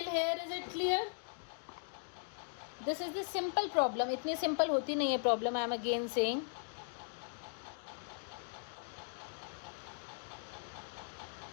here is it clear? This is the simple problem. इतनी simple होती नहीं है problem. I am again saying.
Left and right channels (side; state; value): right; silent; digital silence